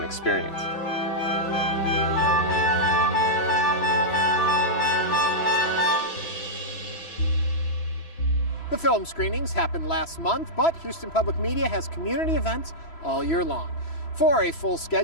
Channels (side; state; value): right; late; 6.0 ms